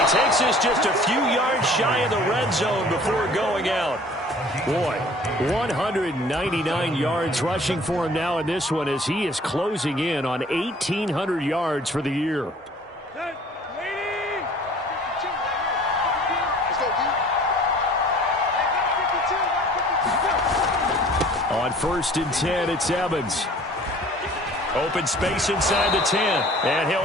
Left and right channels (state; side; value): normal; both; correlation 0.50